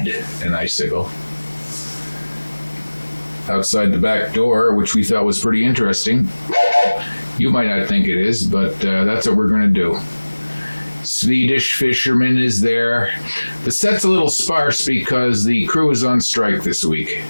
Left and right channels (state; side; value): inverted; both; correlation -1.00